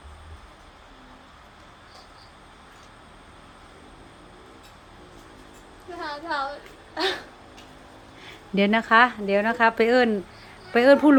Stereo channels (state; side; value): identical; both; correlation 1.00